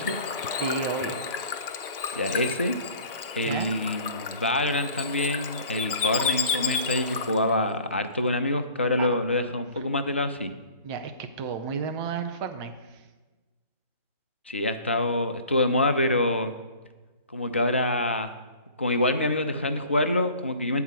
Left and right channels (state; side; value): inverted; both; correlation -0.46